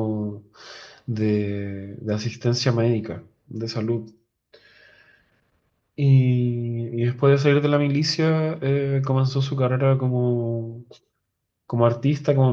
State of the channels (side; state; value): both; identical; correlation 1.00